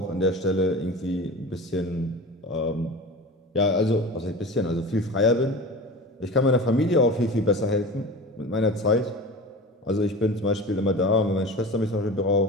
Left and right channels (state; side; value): normal; both; correlation 0.33